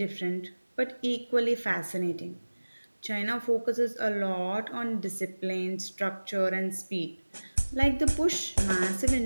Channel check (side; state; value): both; inverted; correlation -1.00